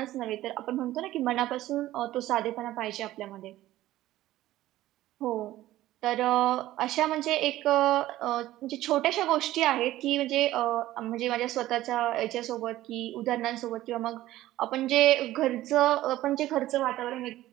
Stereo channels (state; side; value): quieter; left; 15.2 dB